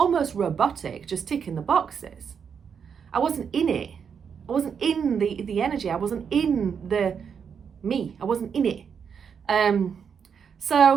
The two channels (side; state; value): left; quieter; 6.9 dB